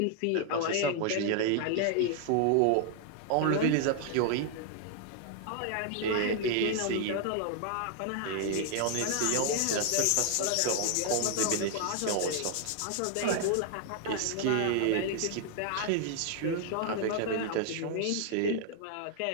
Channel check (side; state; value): both; different; correlation 0.00